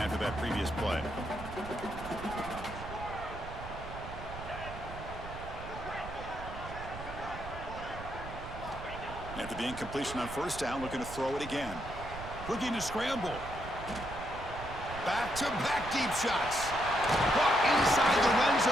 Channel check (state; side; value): noise; right; rumble, 11 dB below the sound